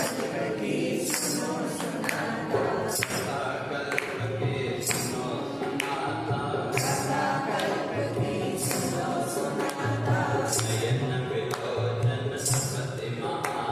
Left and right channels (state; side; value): identical; both; correlation 1.00